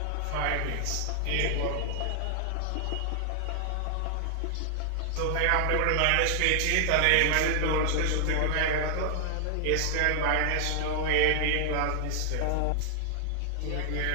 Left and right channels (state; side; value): different; both; correlation 0.00